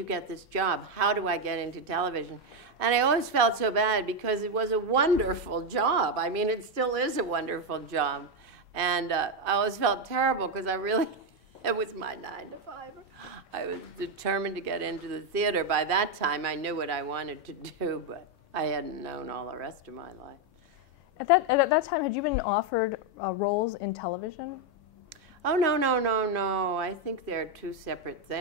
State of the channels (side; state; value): both; normal; correlation 0.05